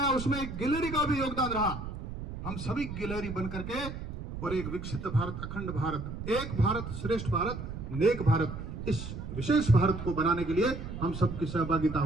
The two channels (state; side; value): noise; right; rumble, 8 dB below the sound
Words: उसमें एक गिलहरी का भी योगदान रहा, हम सभी गिलहरी बन करके और एक विकसित भारत, अखंड भारत, एक भारत श्रेष्ठ भारत, नेक भारत, इस विशेष भारत को बनाने के लिए हम सबकी सहभागिता